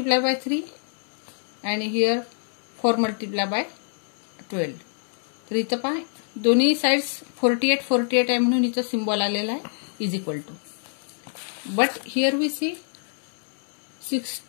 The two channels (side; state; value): right; silent; 61 dB below the other